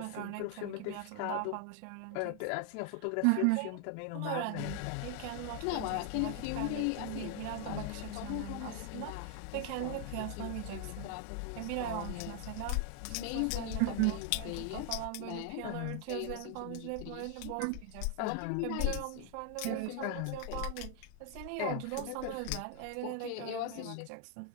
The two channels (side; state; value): both; different; correlation 0.00